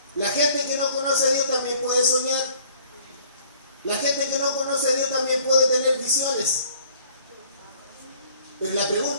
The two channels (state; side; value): inverted; both; correlation -0.56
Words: La gente que no conoce a Dios también puede soñar. La gente que no conoce a Dios también puede tener visiones. Pero la